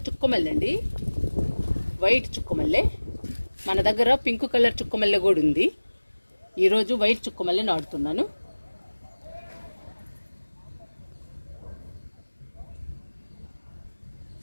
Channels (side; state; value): both; inverted; correlation -1.00